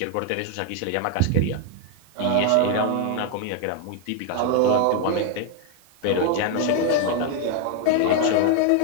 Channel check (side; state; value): both; different; correlation 0.01